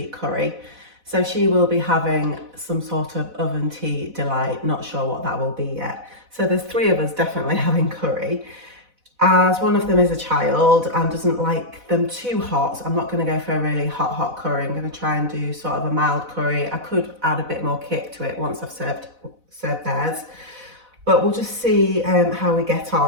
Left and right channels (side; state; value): left; late; 4.0 ms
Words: curry. So she will be having some sort of oven tea delight, not sure what that will be yet. So there's 3 of us definitely having curry. As one of them is a child and doesn't like them too hot, so I'm not going to go for a really hot curry. I'm going to try and do sort of a mild curry. I could add a bit more kick to it once I've served theirs. But we'll just see how we get